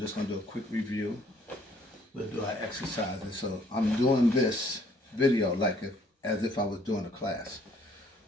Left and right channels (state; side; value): normal; both; correlation 0.62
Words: going to do a quick review. We'll do our exercises. So I'm doing this video like as if I was doing a class.